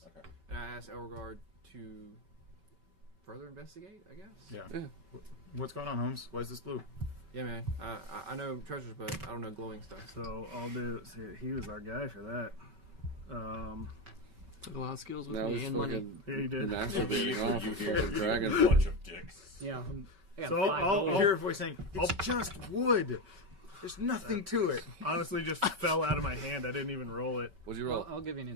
Okay. and I ask Elregard to further investigate, I guess. Yeah. Yeah. What's going on, Holmes? Why is this blue? Yeah, man. I know treasures, but I don't know glowing stuff. So I'll do. See, he was our guy for that. Took a lot of skills with That was me and money. fucking Yeah, you did. masturbating off a fucking dragon. Bunch of dicks. Yeah. I got So 5 I'll- gold. You hear a voice saying, "It's just wood. There's nothing to it." Honestly, just fell out of my hand. I didn't even roll it. What'd you roll? I'll give you an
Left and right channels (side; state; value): left; late; 5.2 ms